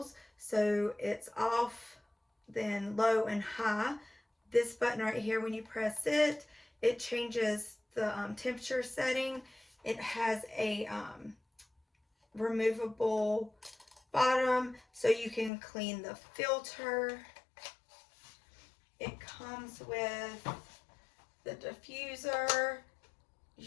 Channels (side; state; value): right; drops out; at 15.5 s